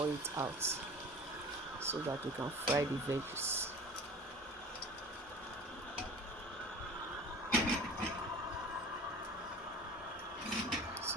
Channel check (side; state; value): both; normal; correlation 0.40